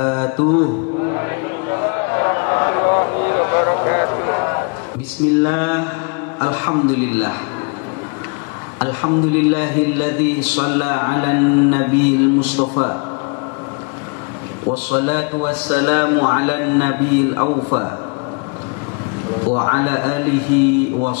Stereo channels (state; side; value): quieter; right; 35.2 dB